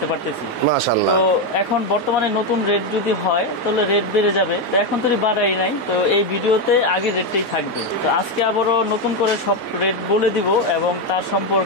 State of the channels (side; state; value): both; normal; correlation 0.07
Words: পারতেছি। মাশাআল্লাহ। তো এখন বর্তমানে নতুন রেট যদি হয় তাহলে রেট বেড়ে যাবে, তো এখন তো বাড়াই নাই, তো এই ভিডিওতে আগের রেটটাই থাকবে। তো আজকে আবারও নতুন করে সব রেট বলে দিব এবং তার